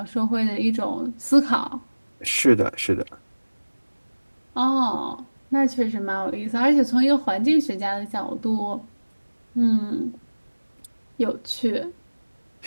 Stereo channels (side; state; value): both; inverted; correlation -1.00